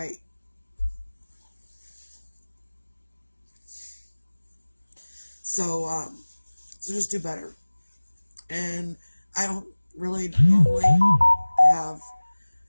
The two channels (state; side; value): inverted; both; correlation -1.00